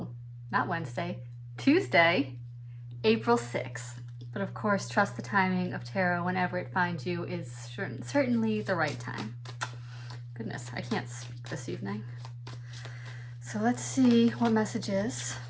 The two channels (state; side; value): identical; both; correlation 1.00